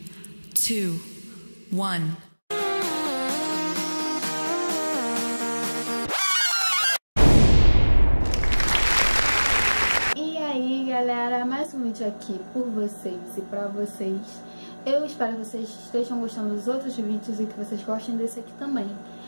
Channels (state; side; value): inverted; both; correlation -1.00